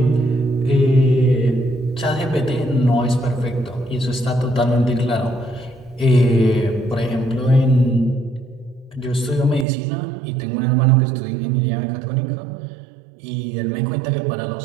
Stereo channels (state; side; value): drops out; left; at 9.7 s